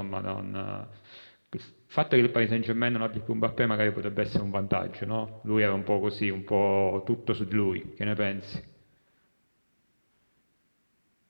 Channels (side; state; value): both; inverted; correlation -1.00